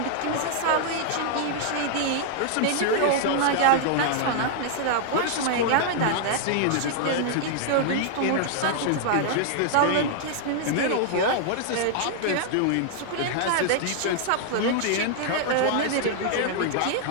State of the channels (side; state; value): both; different; correlation -0.01